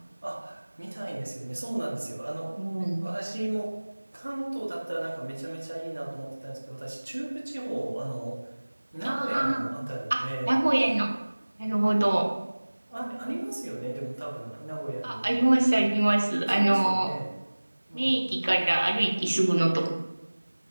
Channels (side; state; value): both; inverted; correlation -1.00